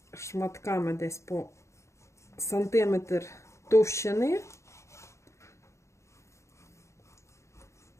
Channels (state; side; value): late; right; 0.14 ms